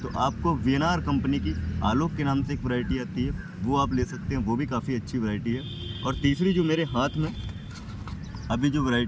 तो आपको वीएनआर कंपनी की आलोक के नाम से एक वैरायटी आती है, वो आप ले सकते हैं। वो भी काफ़ी अच्छी वैरायटी है। और तीसरी जो मेरे हाथ में अभी जो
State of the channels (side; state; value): both; identical; correlation 1.00